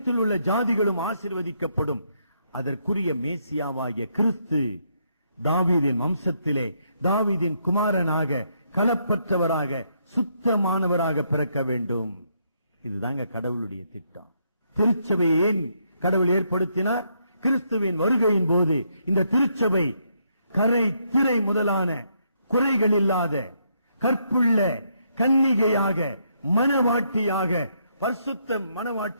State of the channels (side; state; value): both; inverted; correlation -0.75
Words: உள்ள ஜாதிகளும் ஆசீர்வதிக்கப்படும். அதற்குரிய மேசியாவாகிய கிறிஸ்து தாவீதின் வம்சத்திலே தாவீதின் குமாரனாக, கலப்பற்றவராக, சுத்தமானவராக பிறக்க வேண்டும். இதுதாங்க கடவுளுடைய திட்டம். திருச்சபையை ஏன் கடவுள் ஏற்படுத்தினார்? கிறிஸ்துவின் வருகையின் போது இந்த திருச்சபை கரை திரை முதலான குறைகள் இல்லாத கற்புள்ள கன்னிகையாக, மனவாட்டியாக, பரிசுத்த